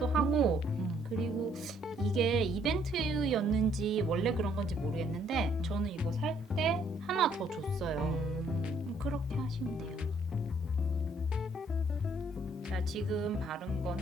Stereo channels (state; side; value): normal; both; correlation 0.66